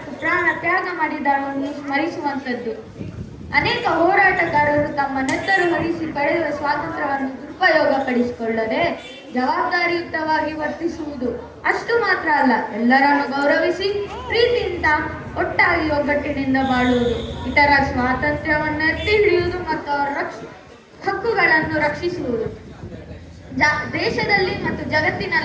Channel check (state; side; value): identical; both; correlation 1.00